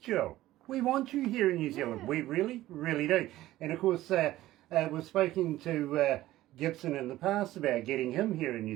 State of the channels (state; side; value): quieter; left; 15.5 dB